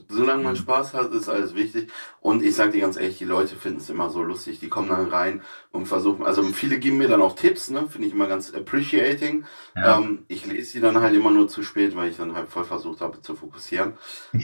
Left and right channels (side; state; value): both; inverted; correlation -1.00